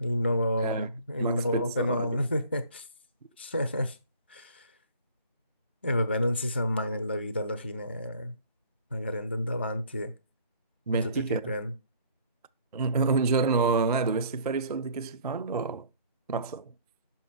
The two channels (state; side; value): inverted; both; correlation -0.54